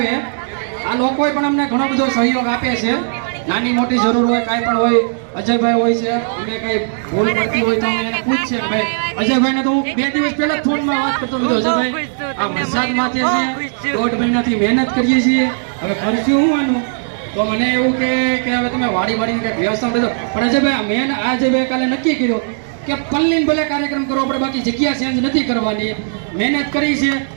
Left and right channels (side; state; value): left; silent; 68 dB below the other